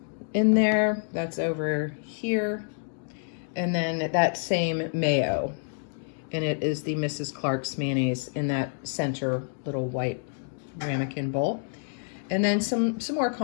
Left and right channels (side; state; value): right; silent; digital silence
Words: in there. That's over here. And then that same mayo. And it is the Mrs. Clark's mayonnaise in that center little white ramekin bowl. And then some more